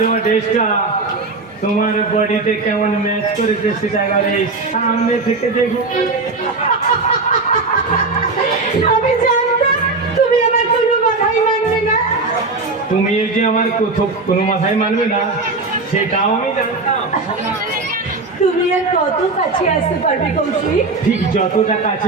ড্রেসটা তোমার বডিতে কেমন ম্যাচ করেছে সেটা এবারে সামনে থেকে দেখো। আমি জানতাম তুমি আমার কোনো কথাই মানবে না। তুমি এই যে আমার কোনো মাথায় মানবে না সেটাও আমি জানতাম। তুমি আর কত কাছে আসতে পারবে কৌশিক? ঠিক যতটা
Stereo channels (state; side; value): quieter; left; 3.6 dB